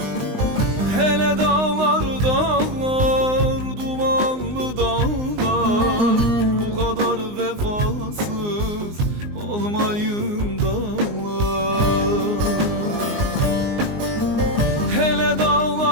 Hele dağlar dağlar, dumanlı dağlar, bu kadar vefasız olmayın dağlar. Hele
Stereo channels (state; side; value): late; left; 19 ms